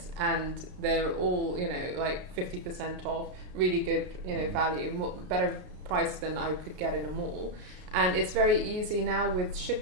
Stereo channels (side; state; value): left; late; 33 ms